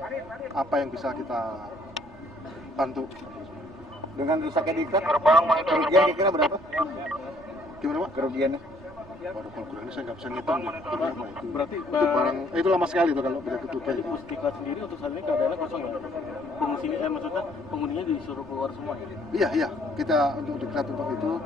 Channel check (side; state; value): right; noise; rumble, 22 dB below the sound